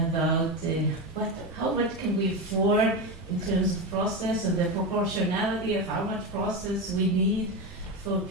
about how much can we afford in terms of process and the proportionality of how much process we need for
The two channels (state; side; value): normal; both; correlation 0.16